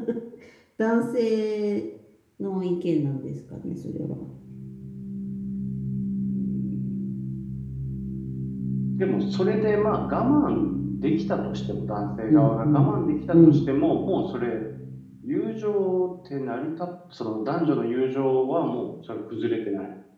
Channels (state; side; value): identical; both; correlation 1.00